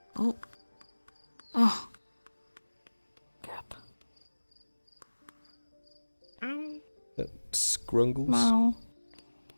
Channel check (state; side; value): inverted; both; correlation -1.00